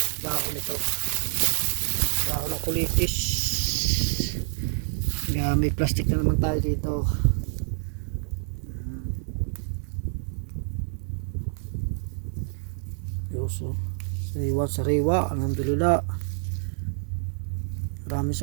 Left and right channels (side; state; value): left; silent; 57 dB below the other